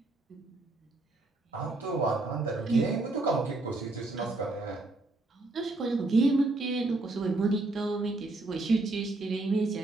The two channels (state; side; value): quieter; left; 3.1 dB